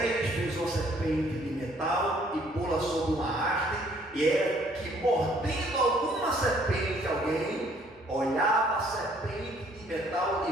fez uma serpente de metal e pô-la sobre uma haste, e era que, mordendo alguma serpente, alguém olhava a serpente de metal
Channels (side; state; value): both; normal; correlation 0.62